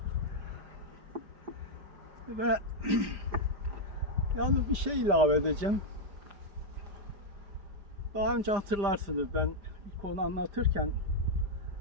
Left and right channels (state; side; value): late; left; 5.1 ms